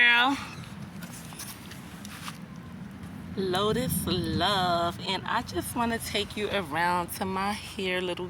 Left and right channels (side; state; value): both; identical; correlation 1.00